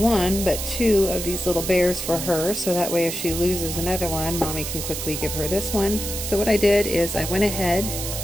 but two of these little bears for her, so that way if she loses another one, Mommy can quickly give her this one. So what I did is I went ahead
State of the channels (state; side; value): noise; right; hiss, 5 dB below the sound